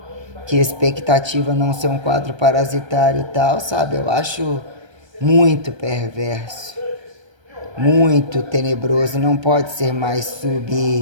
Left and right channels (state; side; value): late; left; 1.3 ms